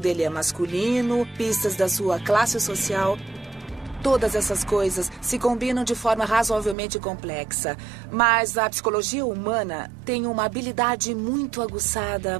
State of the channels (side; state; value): left; drops out; at 6.8 s